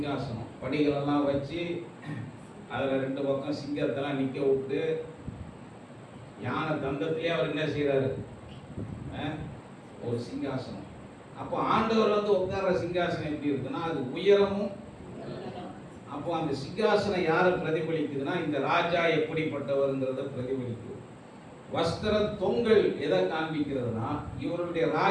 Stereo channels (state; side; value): identical; both; correlation 1.00